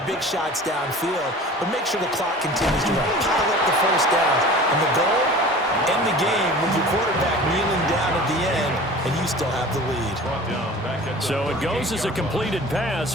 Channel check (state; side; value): normal; both; correlation 0.41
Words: big shots downfield, but make sure the clock continues to run. Pile up the first downs, and the goal, end the game with your quarterback kneeling down at the end, and you still have the lead. So it goes as a completed pass,